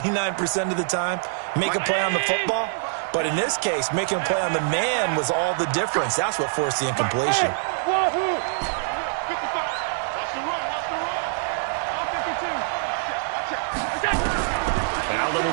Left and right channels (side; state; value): left; silent; digital silence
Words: of the time, make a play on the football. But in this case, making a play on the man was all the difference. That's what forced the incompletion. Wahoo! 55. Watch the run. All 52. Allen